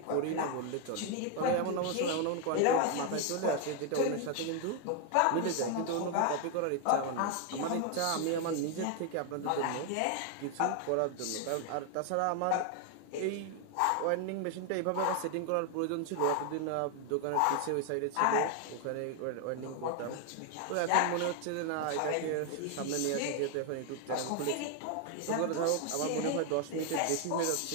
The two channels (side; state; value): both; different; correlation 0.00